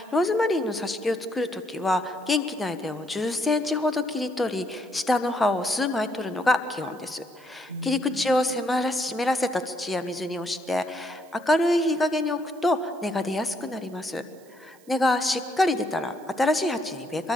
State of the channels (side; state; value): right; noise; hiss, 28 dB below the sound